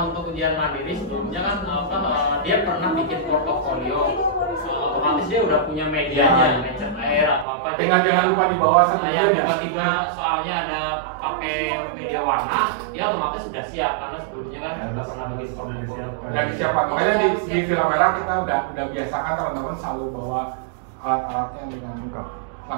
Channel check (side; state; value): left; drops out; at 7.5 s